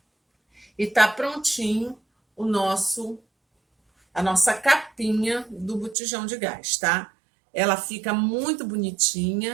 E tá prontinho a nossa capinha do botijão de gás, tá? Ela fica muito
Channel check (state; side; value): drops out; left; at 6.0 s